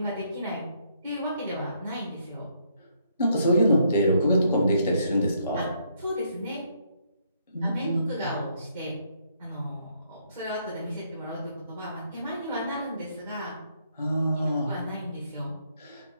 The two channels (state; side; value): inverted; both; correlation -0.71